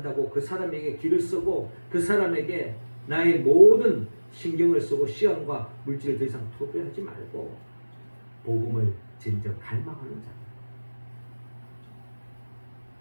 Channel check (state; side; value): inverted; both; correlation -1.00